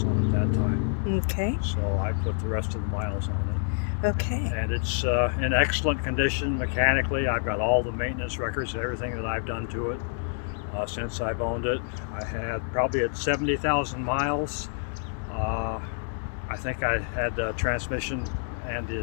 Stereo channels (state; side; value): silent; right; digital silence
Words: on it that time. Okay. So I put the rest of the miles on it. Okay. And it's in excellent condition mechanically. I've got all the maintenance records, everything that I've done to it. Since I've owned it. I had probably at 70,000 miles. I think I had the transmission and the